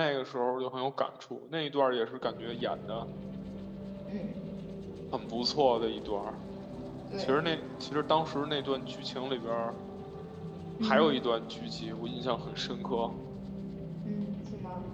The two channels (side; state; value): both; identical; correlation 1.00